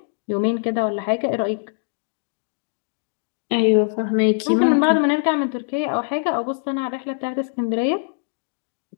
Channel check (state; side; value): silent; right; digital silence